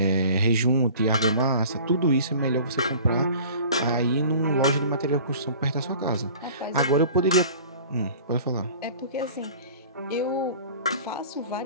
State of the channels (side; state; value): both; inverted; correlation -0.44